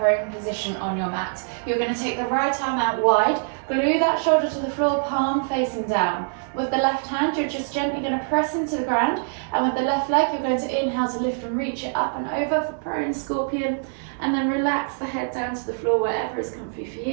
position on your mat. You're going to take the right arm out wide, glue that shoulder to the floor, palm facing down. With the left hand, you're just gently going to press into the ground. And with the left leg, you're going to inhale to lift and reach it up and over for prone scorpion. And then relax the head down to the floor wherever is comfy for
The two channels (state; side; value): silent; left; digital silence